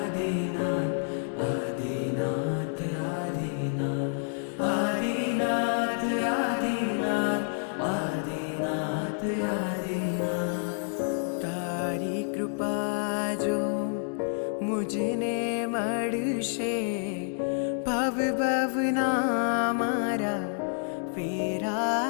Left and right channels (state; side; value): silent; right; digital silence